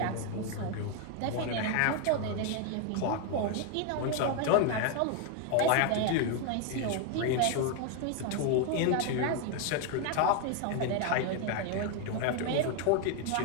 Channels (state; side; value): different; both; correlation 0.01